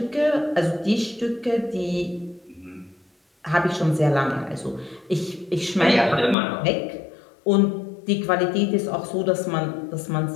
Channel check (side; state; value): right; drops out; at 6.4 s